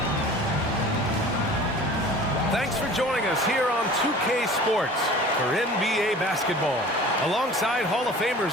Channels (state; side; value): normal; both; correlation 0.43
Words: Thanks for joining us here on 2K Sports for NBA basketball. Alongside Hall of